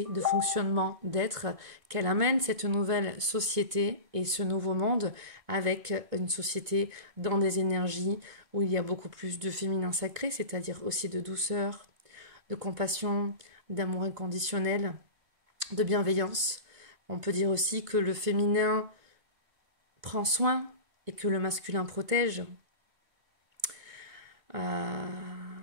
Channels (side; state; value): left; late; 1.6 ms